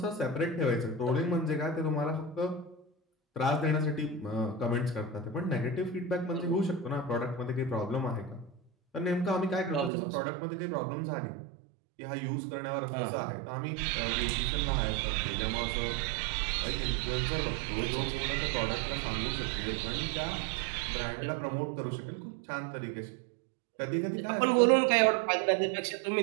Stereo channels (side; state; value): left; drops out; at 9.9 s